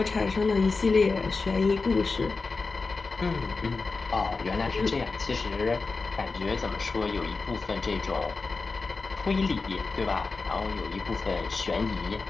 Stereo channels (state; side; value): quieter; right; 4.1 dB